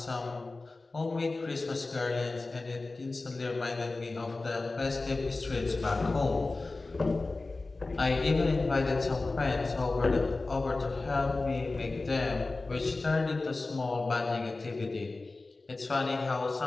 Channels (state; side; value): quieter; right; 3.4 dB